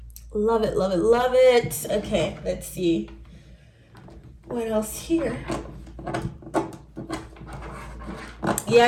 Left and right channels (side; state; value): both; identical; correlation 1.00